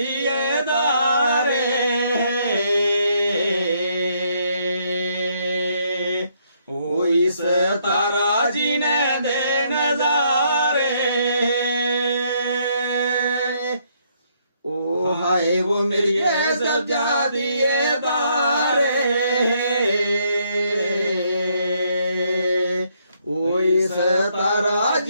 दारे, ओ इस तारा जी ने दे नजारे, ओ हाय वो मेरी सजादिए दारे, ओ इस तारा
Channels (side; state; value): both; inverted; correlation -0.71